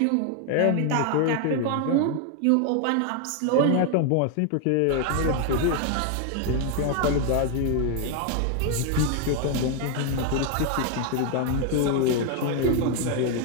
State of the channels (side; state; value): both; different; correlation 0.01